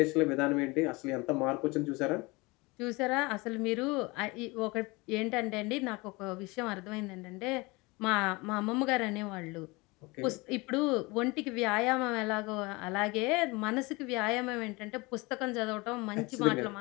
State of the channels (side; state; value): right; quieter; 24.7 dB